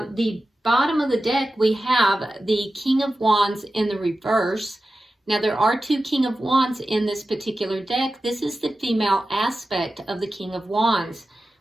the bottom of the deck, we have the King of Wands in the reverse. Now, there are two King of Wands in this particular deck. This is the female aspect of the King of Wands.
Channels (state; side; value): normal; both; correlation 0.93